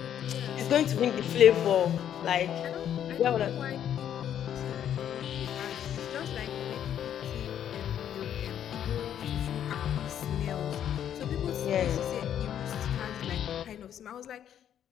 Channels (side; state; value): right; quieter; 9.9 dB